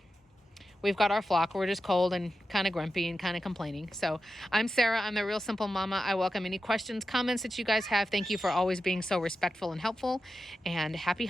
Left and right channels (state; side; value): normal; both; correlation 0.91